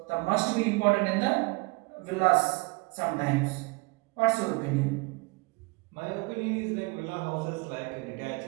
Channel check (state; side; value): quieter; left; 27.6 dB